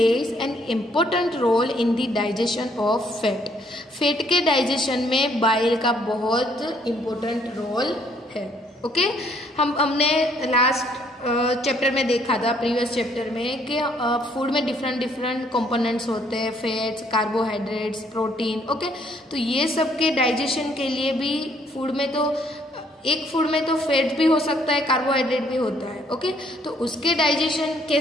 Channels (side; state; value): both; normal; correlation 0.66